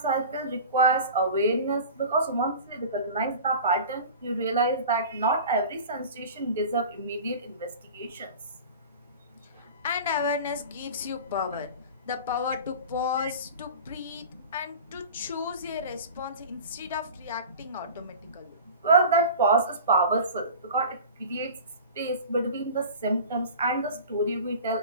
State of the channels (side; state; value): both; inverted; correlation -0.37